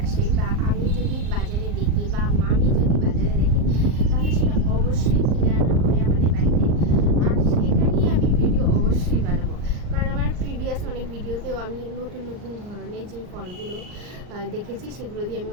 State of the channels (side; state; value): left; late; 39 ms